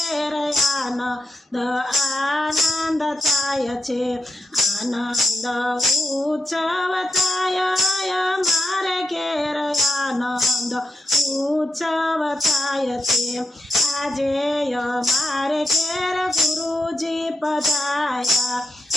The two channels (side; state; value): both; normal; correlation 0.84